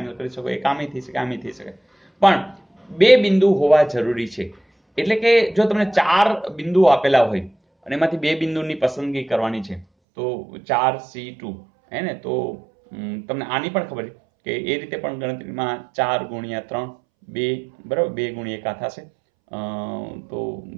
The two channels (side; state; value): left; drops out; at 9.9 s